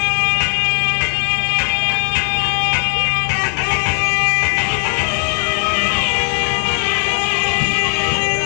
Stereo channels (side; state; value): right; silent; 68 dB below the other